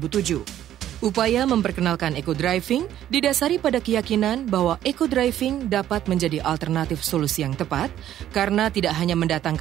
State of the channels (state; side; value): quieter; left; 11.7 dB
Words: Upaya memperkenalkan eco-driving didasari pada keyakinan bahwa eco-driving dapat menjadi alternatif solusi yang tepat karena tidak hanya